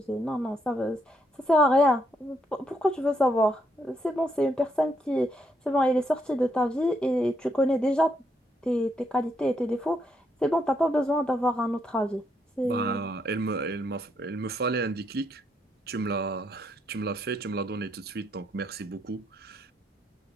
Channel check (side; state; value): both; normal; correlation 0.76